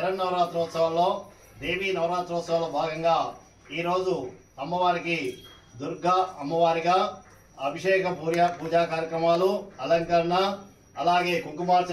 దేవీ నవరాత్రోత్సవాల్లో భాగంగా ఈరోజు అమ్మవారికి దుర్గా అమ్మవారిగా అభిషేక పూజా కార్యక్రమాలు, అలంకరణ, అలాగే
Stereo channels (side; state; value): both; identical; correlation 1.00